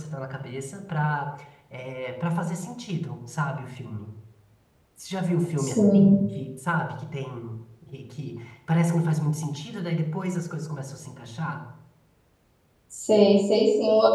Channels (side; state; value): both; identical; correlation 1.00